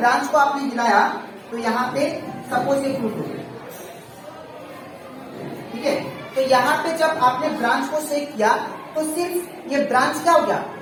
को आपने हिलाया तो यहाँ पे सपोज ये फ्रूट हो गया, ठीक है, तो यहाँ पे जब आपने ब्रांच को शेक किया तो सिर्फ ये ब्रांच क्या हो गया,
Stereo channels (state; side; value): identical; both; correlation 1.00